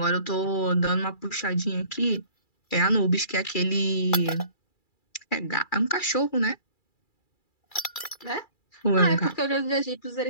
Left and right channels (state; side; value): late; right; 2.3 ms